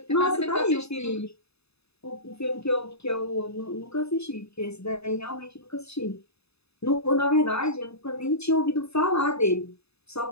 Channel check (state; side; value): late; right; 0.79 ms